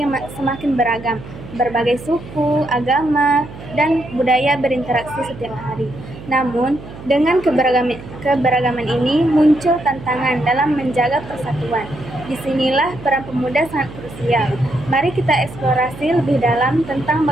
semakin beragam. Berbagai suku, agama, dan budaya berinteraksi setiap hari. Namun, dengan keberagaman ini muncul tantangan dalam menjaga persatuan. Disinilah peran pemuda sangat krusial. Mari kita eksplorasi lebih dalam tentang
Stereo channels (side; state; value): right; noise; hum, 15 dB below the sound